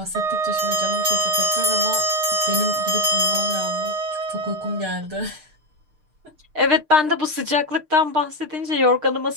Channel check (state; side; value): late; left; 6.6 ms